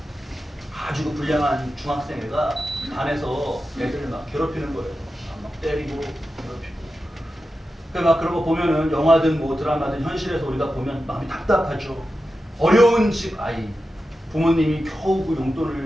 아주 불량한 중학생애가 반에서 애들을 막 괴롭히는 거예요. 막 때리고 괴롭히고. 막 그런 거 보면은 영화든 뭐 드라마든 현실에서 우리가 보면 마음이 답답하죠. 어려운 집 아이, 부모님이 겨우 그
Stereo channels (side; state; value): both; normal; correlation 0.91